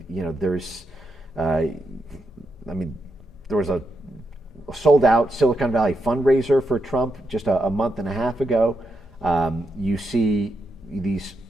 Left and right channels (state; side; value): normal; both; correlation 0.83